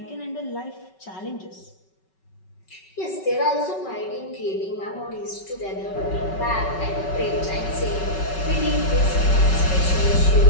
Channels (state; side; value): late; right; 5.3 ms